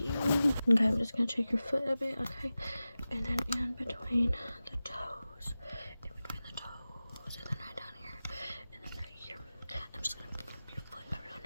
Okay, I'm just gonna take your foot a bit. Okay, and then in between the toes, and then right down here, and then right here. I'm just gonna flip your foot around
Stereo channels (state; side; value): inverted; both; correlation -0.95